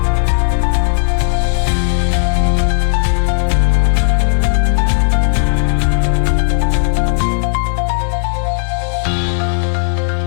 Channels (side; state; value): right; silent; digital silence